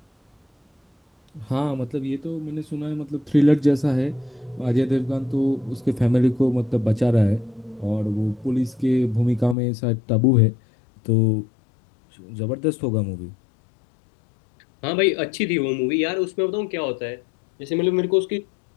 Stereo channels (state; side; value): drops out; right; at 9.6 s